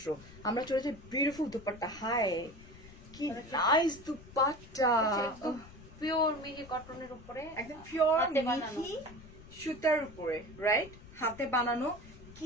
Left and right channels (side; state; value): left; noise; rumble, 19 dB below the sound